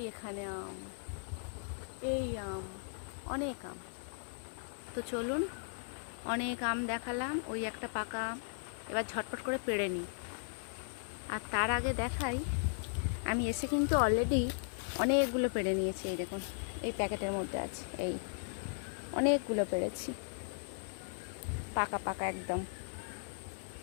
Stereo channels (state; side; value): silent; right; 53 dB below the other